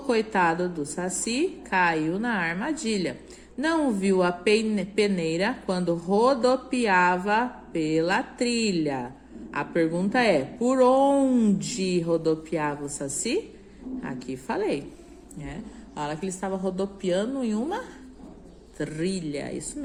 do Saci caiu na armadilha. Não viu a peneira quando rodopiava pela trilha. A pergunta é, por onde rodopiava o Saci? Aqui falei. Fala que ele estava rodopiando em uma trilha, isso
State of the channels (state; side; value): identical; both; correlation 1.00